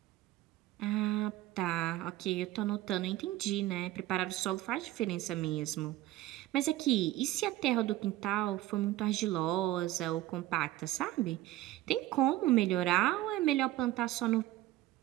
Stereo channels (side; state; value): left; quieter; 15.8 dB